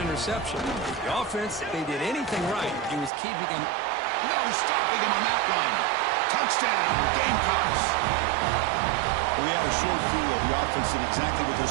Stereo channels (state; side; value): drops out; left; at 3.1 s